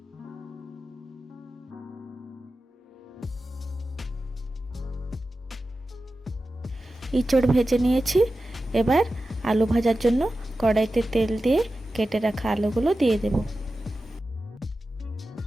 ইঁচড় ভেজে নিয়েছি, এবার আলু ভাজার জন্য কড়াইতে তেল দিয়ে কেটে রাখা আলুগুলো দিয়ে দেব।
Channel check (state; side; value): normal; both; correlation 0.93